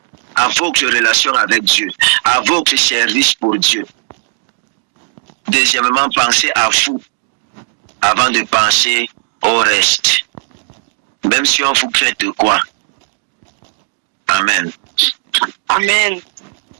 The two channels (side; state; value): left; silent; digital silence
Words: à votre relation avec Dieu, à votre service pour Dieu. Deuxièmement, pensez à vous, avant de penser au reste. Même si on vous crée de quoi. Amen. Amen.